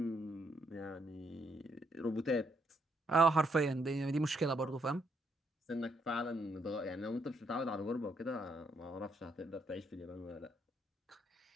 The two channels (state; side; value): normal; both; correlation 0.75